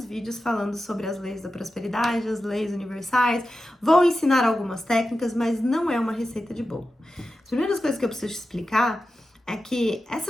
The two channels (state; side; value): normal; both; correlation 0.92